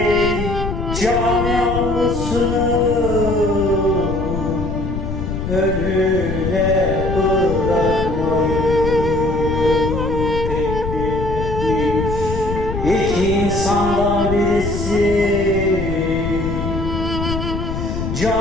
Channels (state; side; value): noise; left; rumble, 5 dB below the sound